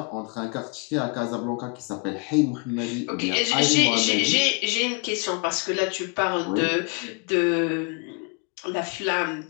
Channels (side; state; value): right; quieter; 35.2 dB